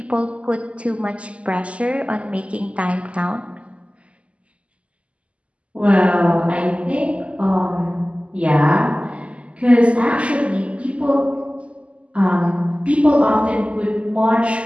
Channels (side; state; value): left; late; 0.060 ms